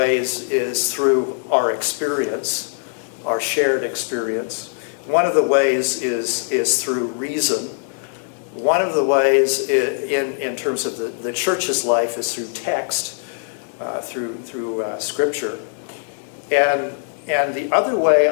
is through our experience, our shared experience. One of the ways is through reason. One of the ways in terms of the church's life is through text, through scripture. And the other way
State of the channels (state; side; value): silent; right; 63 dB below the other